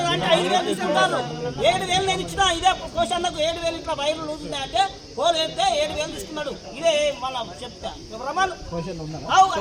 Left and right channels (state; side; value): identical; both; correlation 1.00